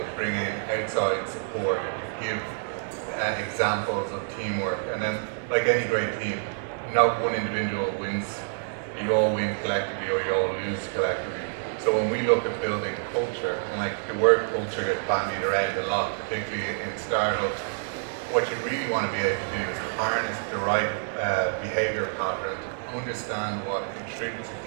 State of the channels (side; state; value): left; silent; digital silence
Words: bring in outside support, give examples of teamwork, and then, like any great team, not one individual wins. You all win collectively or you all lose collectively. So when we look at building culture, and like the word culture gets bandied around a lot, particularly in startups, what you really want to be able to do is harness the right behavior pattern, understand what